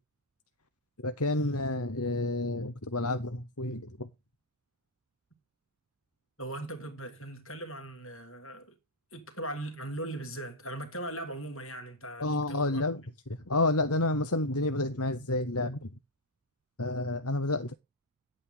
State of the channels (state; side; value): normal; both; correlation -0.01